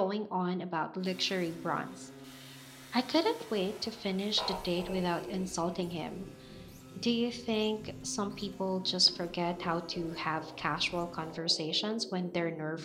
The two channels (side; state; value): both; identical; correlation 1.00